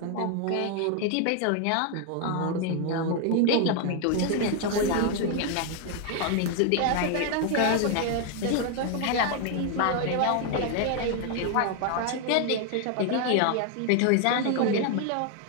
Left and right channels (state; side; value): different; both; correlation 0.00